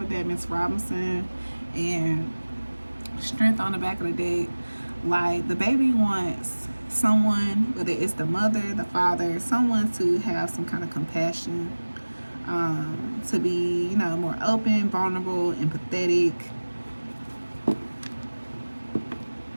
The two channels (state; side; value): inverted; both; correlation -1.00